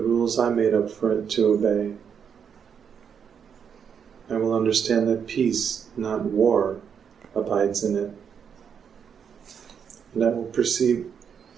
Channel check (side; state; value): left; quieter; 7.3 dB